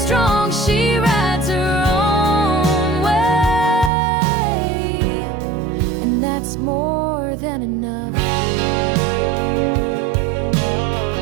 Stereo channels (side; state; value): left; drops out; at 3.9 s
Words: She rides her own way, and that's more than enough.